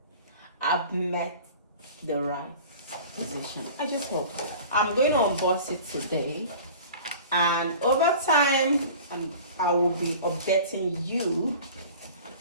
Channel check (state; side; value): inverted; both; correlation -0.42